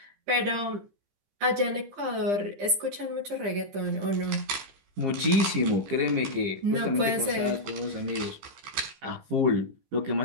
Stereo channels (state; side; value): late; left; 15 ms